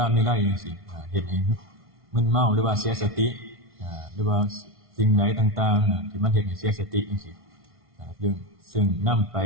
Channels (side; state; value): left; late; 1.5 ms